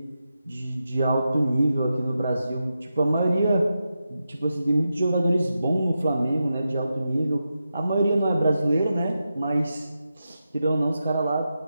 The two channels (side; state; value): both; inverted; correlation -0.89